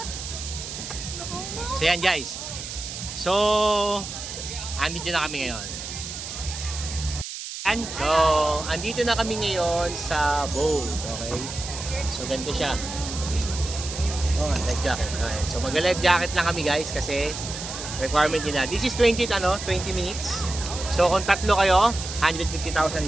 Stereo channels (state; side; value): noise; right; hiss, 8 dB below the sound